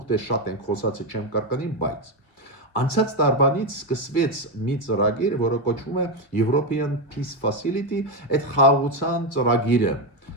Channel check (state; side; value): late; right; 2.1 ms